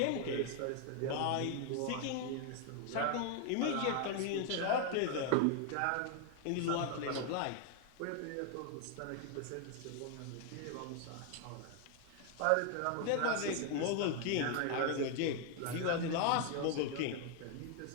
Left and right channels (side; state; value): both; different; correlation 0.00